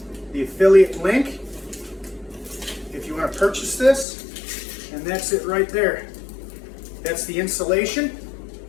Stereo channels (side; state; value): right; drops out; at 4.0 s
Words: the affiliate link if you want to purchase this. And that's it right there. That's the insulation.